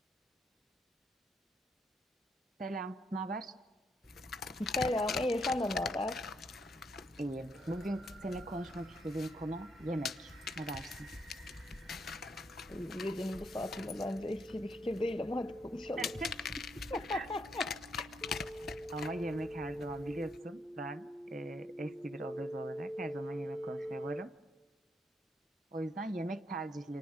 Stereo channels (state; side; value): normal; both; correlation 0.76